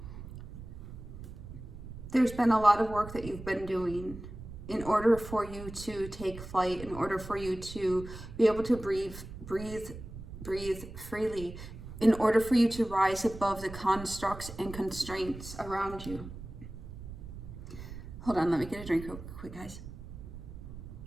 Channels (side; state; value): right; noise; rumble, 12 dB below the sound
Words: There's been a lot of work that you've been doing in order for you to take flight, in order for you to be able to breathe freely, in order for you to rise above the constructs and constraints around you. Hold on, let me get a drink real quick, guys.